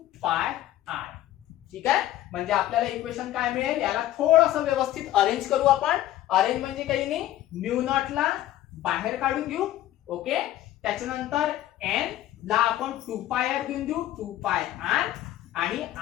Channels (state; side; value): quieter; right; 13.9 dB